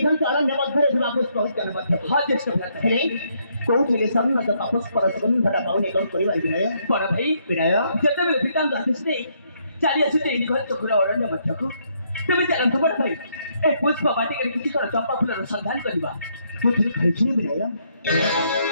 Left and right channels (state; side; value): inverted; both; correlation -0.73